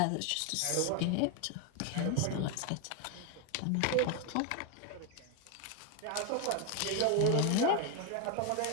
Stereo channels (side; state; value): both; different; correlation 0.01